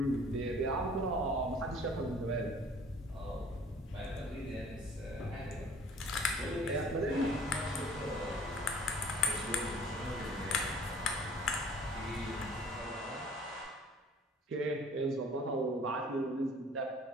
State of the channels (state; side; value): normal; both; correlation 0.52